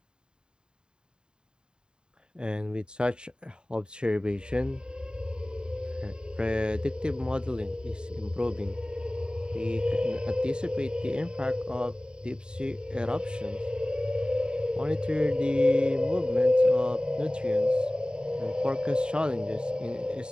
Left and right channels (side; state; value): left; late; 0.048 ms